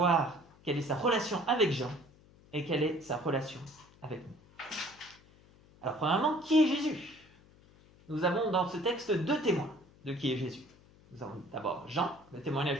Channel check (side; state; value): left; noise; hum, 26 dB below the sound